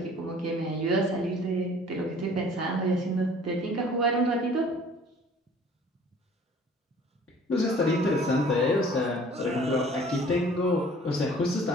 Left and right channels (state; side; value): normal; both; correlation 0.51